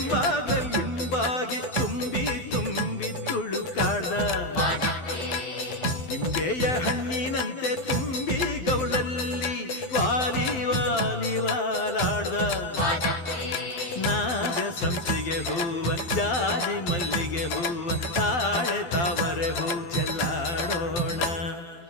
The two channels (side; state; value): right; late; 12 ms